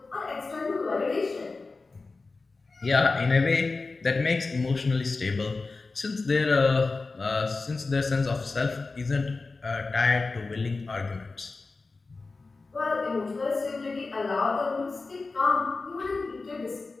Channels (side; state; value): right; quieter; 3.8 dB